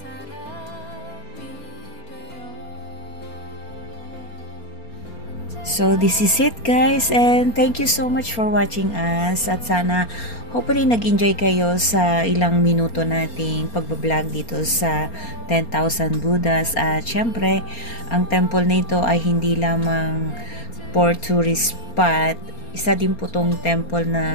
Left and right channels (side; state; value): right; late; 4.3 ms